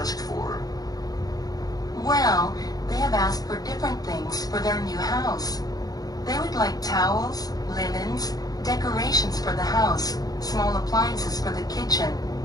for? Well, they have asked for different things for their new house. They would like towels, linens, decorations for the house, small appliances for the kitchen,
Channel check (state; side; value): late; right; 0.18 ms